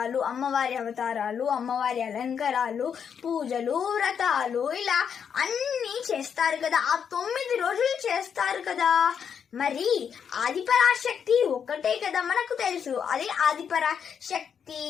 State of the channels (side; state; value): right; quieter; 7.4 dB